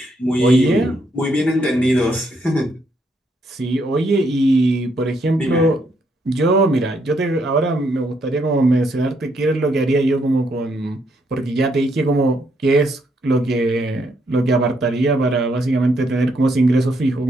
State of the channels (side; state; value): both; normal; correlation 0.75